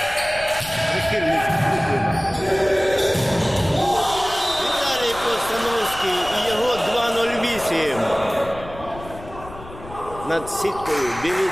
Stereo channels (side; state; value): left; noise; rumble, 16 dB below the sound